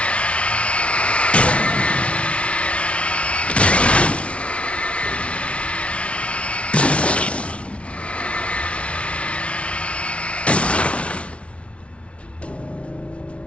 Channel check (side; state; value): right; late; 0.061 ms